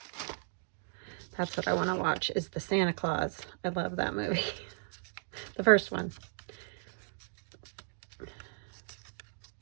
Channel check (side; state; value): left; silent; digital silence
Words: That's what I want to watch, is the Santa Claus. I love that movie. The first one.